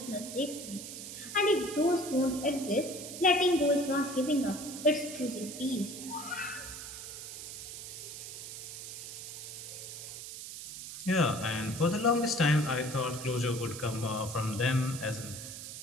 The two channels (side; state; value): right; noise; hiss, 9 dB below the sound